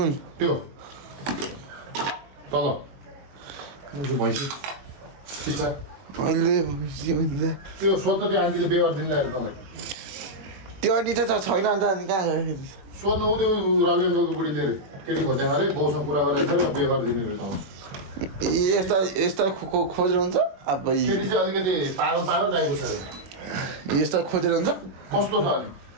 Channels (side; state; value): left; late; 21 ms